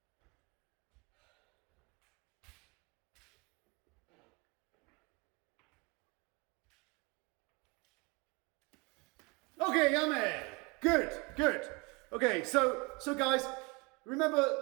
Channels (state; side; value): quieter; left; 28.3 dB